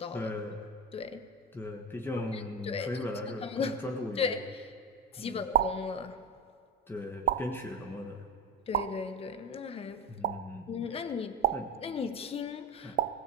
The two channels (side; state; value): both; normal; correlation 0.19